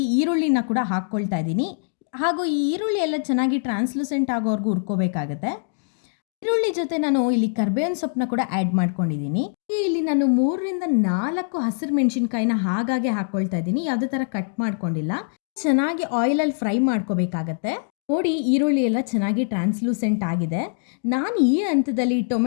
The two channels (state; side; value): silent; right; digital silence